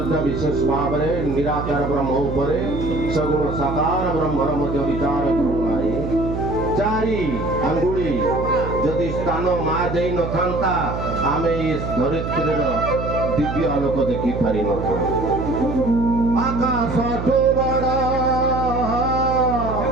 ବିଶେଷ ଭାବରେ ନିରାକାର ବ୍ରହ୍ମ ଉପରେ ସଗୁଣ ସାକାର ବ୍ରହ୍ମର ମଧ୍ୟ ବିଚାର କରୁନାହିଁ। 4 ଆଙ୍ଗୁଳି ଯଦି ସ୍ଥାନ ମା ଦେଇନଥାନ୍ତା ଆମେ ଏ ଧରିତ୍ରୀର ଦିବ୍ୟ ଆଲୋକ ଦେଖିପାରିନଥାନ୍ତୁ। ଆକାଶଠୁ ବଡ଼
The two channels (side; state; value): right; noise; hum, 5 dB below the sound